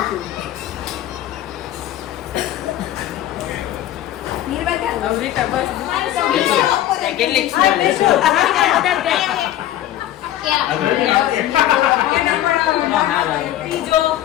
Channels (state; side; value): quieter; right; 13.0 dB